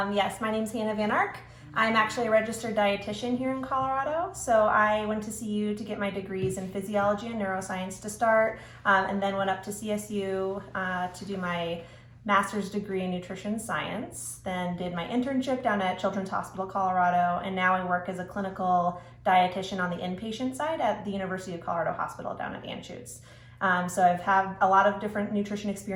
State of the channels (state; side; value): identical; both; correlation 1.00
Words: Yes, my name's Hannah Van Ark. I'm actually a registered dietitian here in Colorado. So I went to CU to get my degrees in physiology and neuroscience to start, and then went up to CSU to do my master's degree in nutrition science, then did my internship down at Children's Hospital Colorado, and now I work as a clinical dietitian on the inpatient side at the University of Colorado Hospital down at Anschutz. So I've had a lot of different nutrition